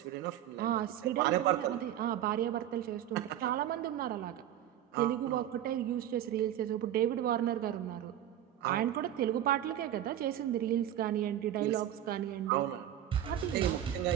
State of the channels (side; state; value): left; quieter; 11.6 dB